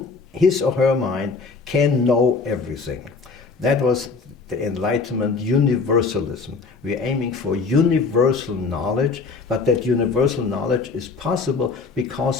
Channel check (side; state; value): right; quieter; 4.6 dB